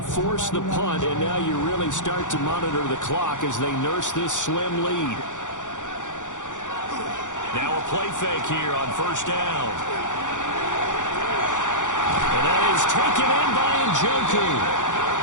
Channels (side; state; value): right; late; 0.86 ms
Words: forced the punt, and now you really start to monitor the clock as they nurse this slim lead. Now a play fake here on 1st down. And that is taken in by Njoku.